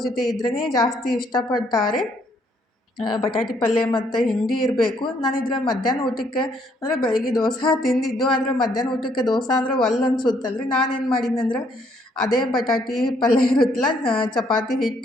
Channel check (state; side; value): normal; both; correlation 0.68